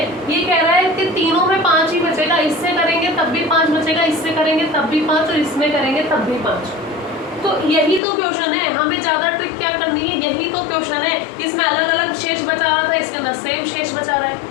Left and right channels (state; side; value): drops out; right; at 8.0 s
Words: ये कह रहा है कि तीनों में 5 ही बचेगा, इससे करेंगे तब भी 5 बचेगा, इससे करेंगे तब भी 5 और इसमें करेंगे तब भी 5। तो यही तो क्वेश्चन है, हमें ज्यादा ट्रिक क्या करनी है, यही तो क्वेश्चन है। इसमें अलग अलग शेष बचा रहा था, इसके अंदर सेम शेष बचा रहा